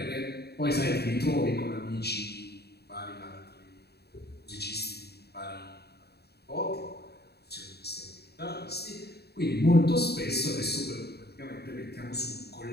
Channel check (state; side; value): late; right; 0.47 ms